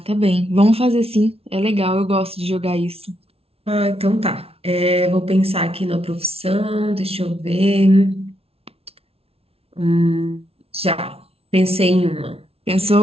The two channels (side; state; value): left; late; 0.29 ms